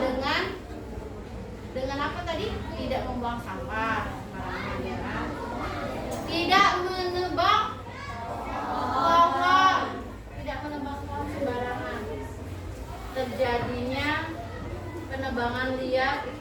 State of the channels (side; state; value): both; identical; correlation 1.00